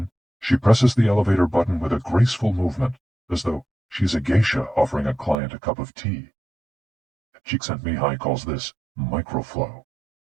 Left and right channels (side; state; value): left; drops out; at 5.4 s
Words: she presses the elevator button with a graceful movement, as though she's a geisha offering a client a cup of tea. Csikszentmihalyi calls this microflow.